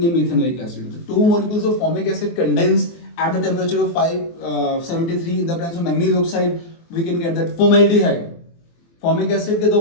methanoic acid। तो 2 molecules of formic acid condense at the temperature of 573 in the presence of manganese oxide, we can get that formaldehyde। Formic acid के 2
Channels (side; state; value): right; late; 24 ms